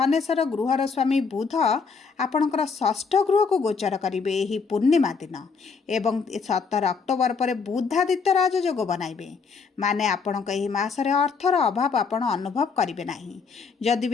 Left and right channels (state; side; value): quieter; right; 5.2 dB